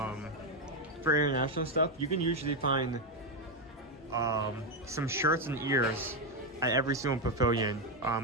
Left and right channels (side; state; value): both; normal; correlation 0.07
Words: international stuff. You can usually find some shirts and ears at every single pavilion